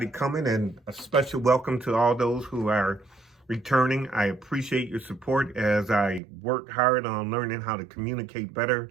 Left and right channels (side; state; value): left; drops out; at 6.2 s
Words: coming, and a special welcome to all those who are returning. I appreciate your support as I work hard on learning how to communicate better